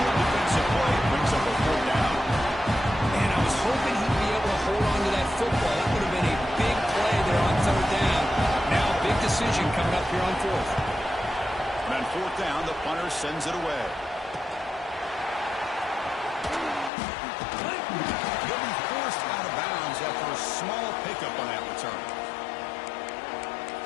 Good defensive play brings up a 4th down. Hoping he'd be able to hold on to that football. That would have been a big play there on 3rd down. Now a big decision coming up here on 4th. And on 4th down, the punter sends it away. He'll be forced out of bounds after a small pickup on that return.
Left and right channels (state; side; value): drops out; right; at 16.9 s